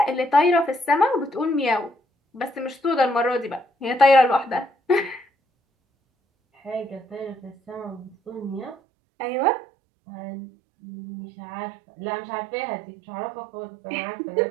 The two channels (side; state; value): left; drops out; at 8.8 s